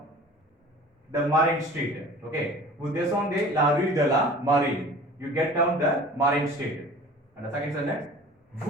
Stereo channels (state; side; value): normal; both; correlation 0.43